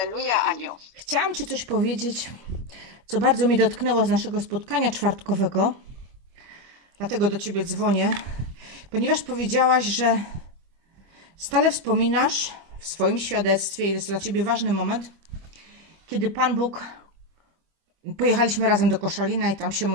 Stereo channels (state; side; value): late; left; 25 ms